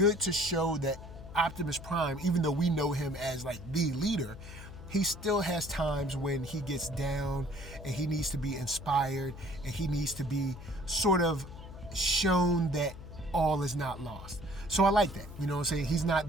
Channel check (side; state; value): left; noise; hum, 14 dB below the sound